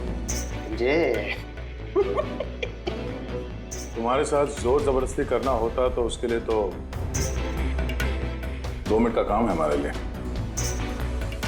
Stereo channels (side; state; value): both; identical; correlation 1.00